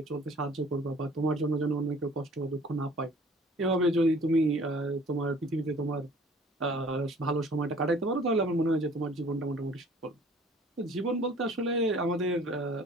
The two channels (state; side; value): normal; both; correlation 0.51